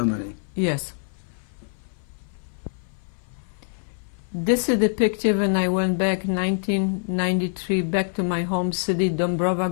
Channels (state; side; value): silent; right; 55 dB below the other